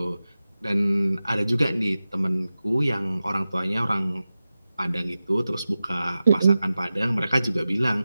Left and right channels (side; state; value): both; inverted; correlation -0.94